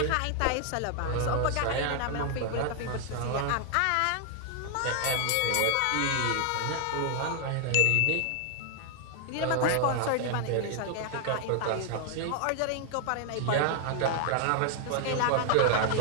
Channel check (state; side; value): different; both; correlation 0.00